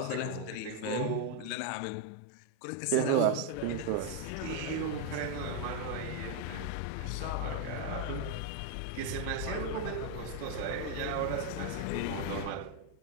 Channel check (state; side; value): different; both; correlation 0.01